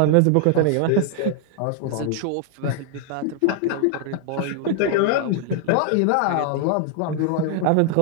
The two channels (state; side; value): different; both; correlation 0.00